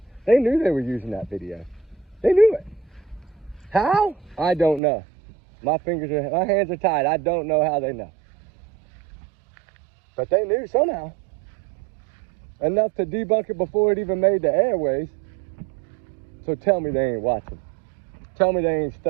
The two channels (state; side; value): drops out; left; at 4.8 s